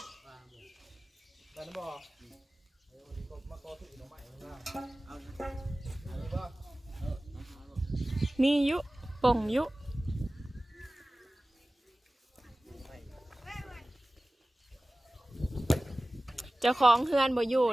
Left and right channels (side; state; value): both; normal; correlation 0.97